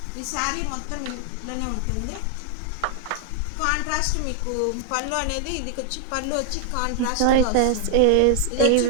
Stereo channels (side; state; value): both; different; correlation 0.00